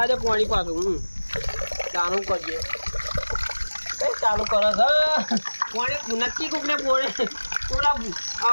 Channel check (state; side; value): inverted; both; correlation -1.00